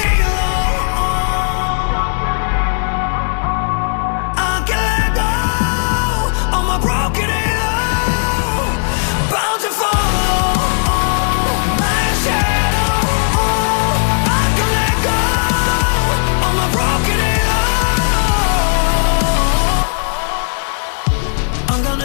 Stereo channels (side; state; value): right; silent; 69 dB below the other